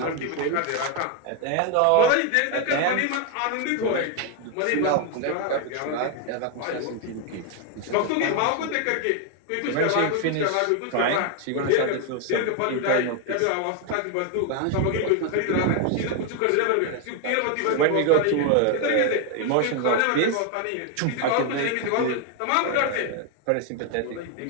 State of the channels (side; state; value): both; different; correlation 0.01